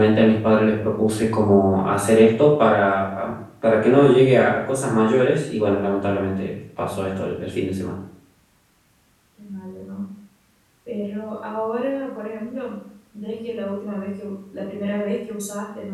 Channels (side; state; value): both; identical; correlation 1.00